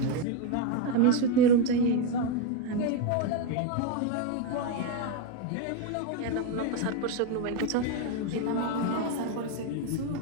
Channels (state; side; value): different; both; correlation 0.03